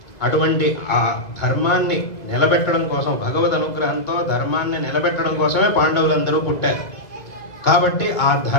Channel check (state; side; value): late; right; 2.2 ms